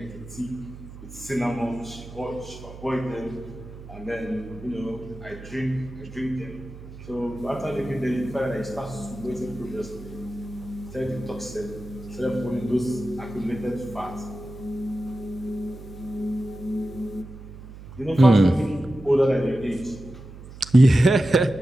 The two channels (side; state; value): right; noise; hum, 15 dB below the sound